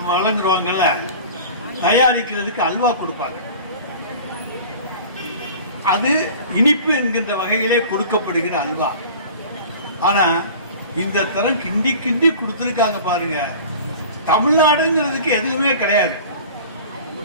வழங்குறவங்கல்ல, தயாரிக்கிறதுக்கு அல்வா கொடுப்பாங்க. அது இனிப்பு என்கின்ற வகையிலே கொடுக்கப்படுகிற அல்வா. ஆனா இந்த தரம் கிண்டி கிண்டி கொடுத்திருக்காங்க பாருங்க. தமிழ்நாடுங்கிறதுக்கு எதுவுமே கிடையாது.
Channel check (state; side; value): inverted; both; correlation -0.41